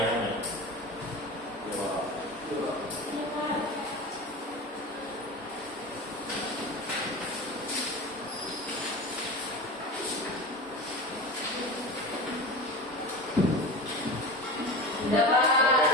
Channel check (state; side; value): normal; both; correlation 0.29